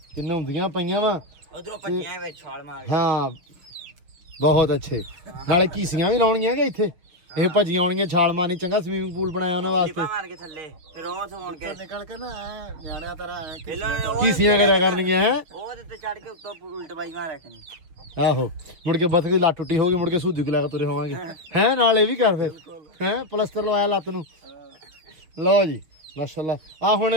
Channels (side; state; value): left; late; 6.5 ms